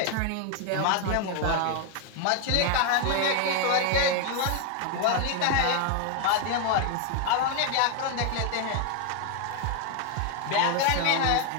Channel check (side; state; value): both; different; correlation 0.00